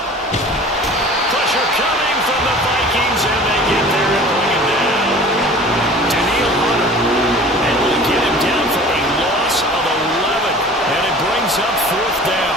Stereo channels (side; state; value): both; normal; correlation 0.44